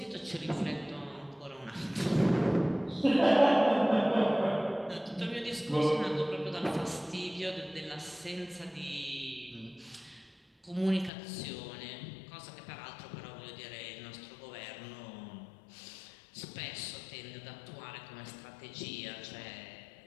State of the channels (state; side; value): drops out; right; at 11.1 s